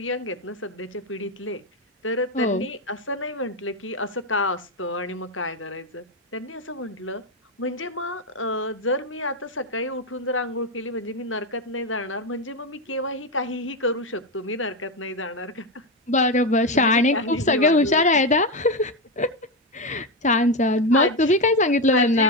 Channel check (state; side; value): normal; both; correlation 0.11